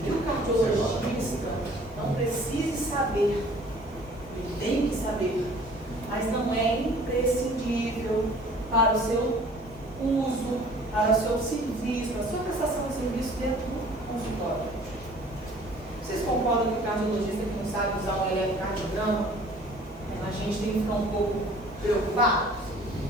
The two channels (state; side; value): normal; both; correlation 0.51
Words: que o cardiologista não precise saber. Ele tem que saber, mas não é imprescindível para o seu uso, para o seu serviço, para a sua prestação de serviço dentro do consultório. Vocês concordam que o cardiologista que não sabe usar um eletrocardiograma, a gente tem que ficar um pouco preocupado?